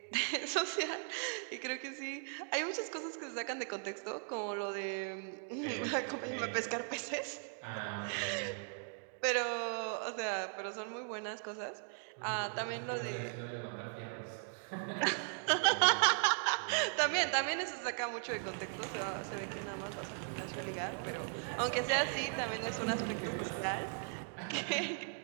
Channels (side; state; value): left; silent; 52 dB below the other